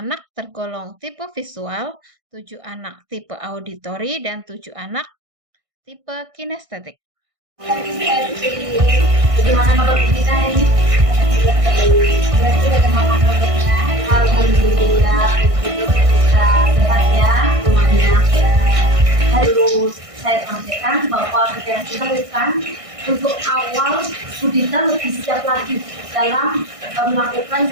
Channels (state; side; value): late; left; 1.6 ms